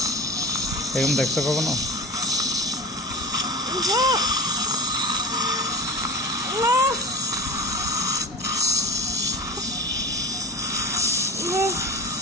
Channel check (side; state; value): both; normal; correlation 0.31